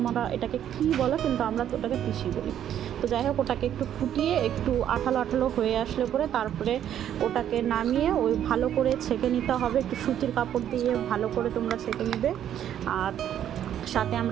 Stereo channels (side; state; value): left; quieter; 10.4 dB